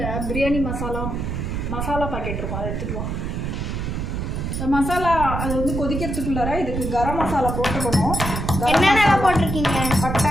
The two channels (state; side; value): noise; right; rumble, 3 dB below the sound